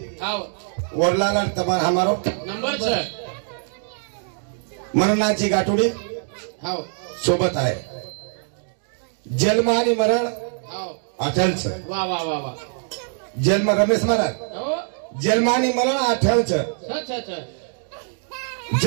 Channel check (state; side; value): silent; left; 63 dB below the other